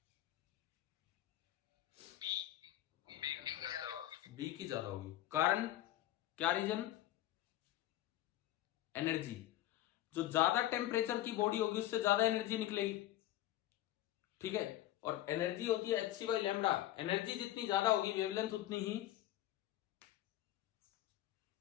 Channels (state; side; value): quieter; right; 14.3 dB